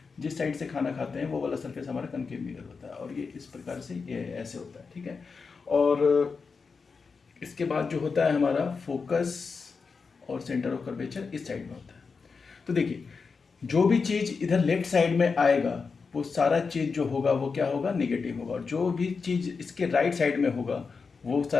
जिस साइड से खाना खाते हैं वो वाला सरफेस हमारा कनकेव मिरर होता है, और ये इस प्रकार से ये ऐसे होता है। ठीक है, और इसके बाद जो होता है हमारा फोकस और सेंटर ऑफ कर्वेचर इस साइड में होता है। तो देखिए, जो भी चीज़ इधर लेफ्ट साइड में आएगा वो सारा चीज़ जो होगा वो क्या होगा, नेगेटिव होगा, और जो भी चीज़ इसके राइट साइड में होगा वो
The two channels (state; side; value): quieter; right; 5.0 dB